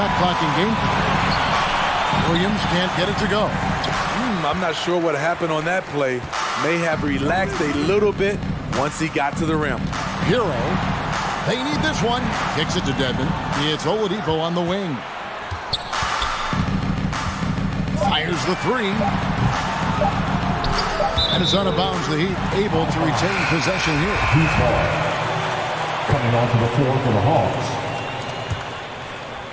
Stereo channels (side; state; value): both; identical; correlation 1.00